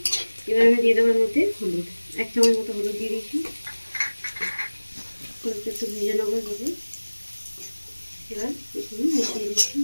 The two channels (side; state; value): both; inverted; correlation -1.00